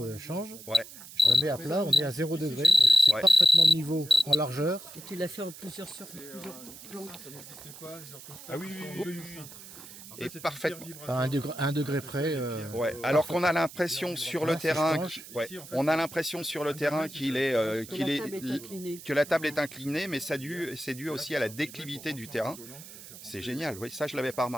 change. Ouais. Je me mets à plat, on est à 0 degré. Donc c'est parfaitement de niveau en largeur. Et tu l'as fait en plusieurs plans. Ah oui, Et parfaitement. À 1 degré près. Ouais. Alors qu'on a l'impression sur le terrain, on a l'impression sur le terrain que la table est inclinée, mais c'est dû aussi à la déclivité du terrain. C'est génial, oui, ça je l'avais pas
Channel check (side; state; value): right; noise; hiss, 16 dB below the sound